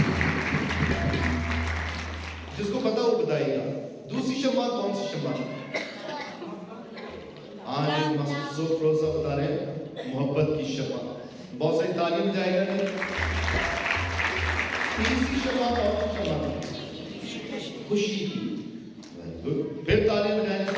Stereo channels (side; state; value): both; identical; correlation 1.00